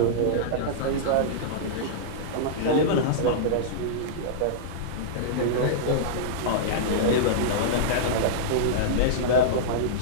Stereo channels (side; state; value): both; different; correlation -0.03